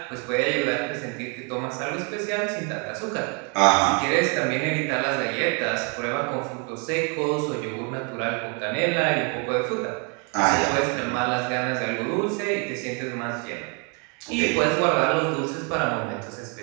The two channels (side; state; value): left; quieter; 35.1 dB